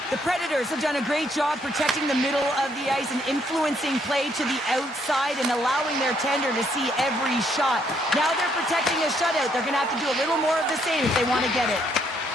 The Predators have done a great job protecting the middle of the ice and influencing play to the outside and allowing their tender to see every shot. Now they're protecting a shutout. They're going to have to do a little more of the same if they want to get it.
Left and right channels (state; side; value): normal; both; correlation 0.71